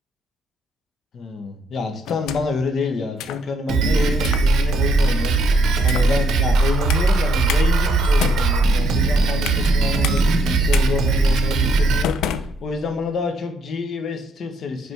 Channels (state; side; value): normal; both; correlation 0.71